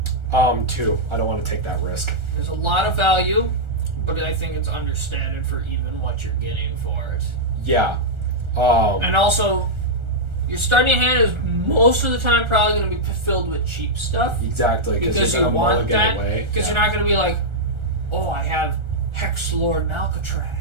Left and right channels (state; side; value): late; left; 1.4 ms